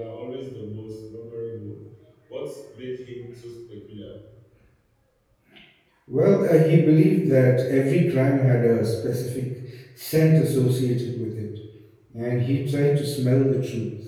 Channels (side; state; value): both; identical; correlation 1.00